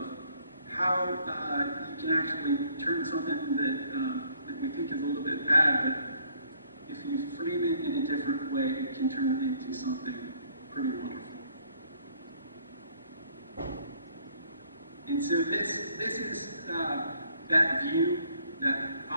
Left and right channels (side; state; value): both; inverted; correlation -0.64